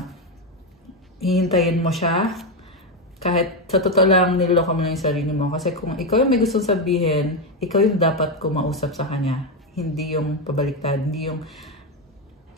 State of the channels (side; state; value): both; normal; correlation 0.09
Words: hihintayin mo siya kahit sa totoo lang niloloko mo lang yung sarili mo. Kasi kung ikaw yung may gustong sabihin, ikaw yung dapat kumausap sa kanya. Hindi yung pabaliktad. Hindi yung